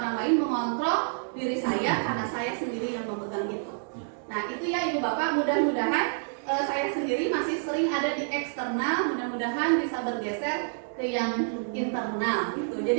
lain mengontrol diri saya karena saya sendiri yang memegang itu. Nah itu ya Ibu Bapak, mudah-mudahan saya sendiri masih sering ada di eksternal, mudah-mudahan bisa bergeser ke yang internal gitu.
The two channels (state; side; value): silent; left; 59 dB below the other